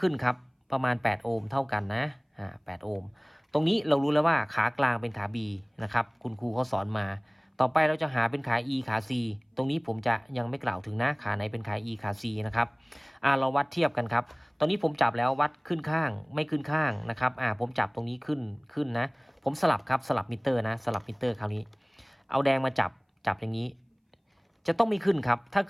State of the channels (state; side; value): identical; both; correlation 1.00